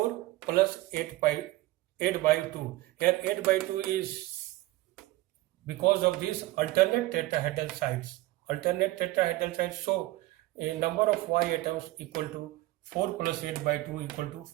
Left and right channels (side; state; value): left; quieter; 18.2 dB